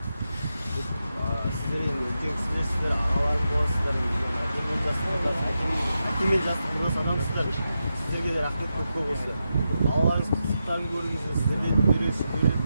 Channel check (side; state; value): both; inverted; correlation -0.88